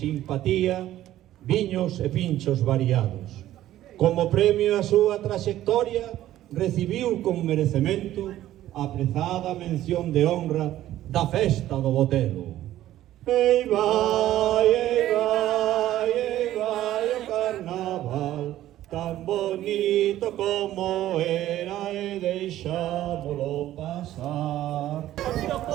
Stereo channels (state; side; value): quieter; left; 13.6 dB